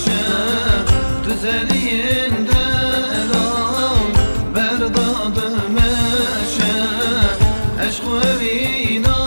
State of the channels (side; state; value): both; inverted; correlation -1.00